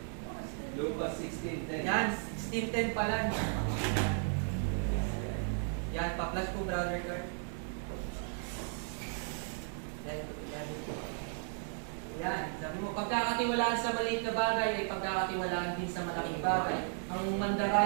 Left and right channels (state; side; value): silent; left; 54 dB below the other